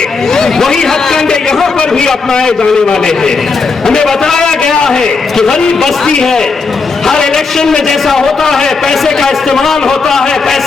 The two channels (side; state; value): right; quieter; 4.4 dB